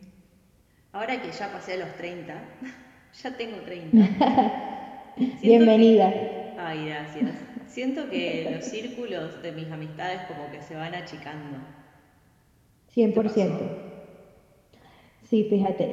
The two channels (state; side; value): identical; both; correlation 1.00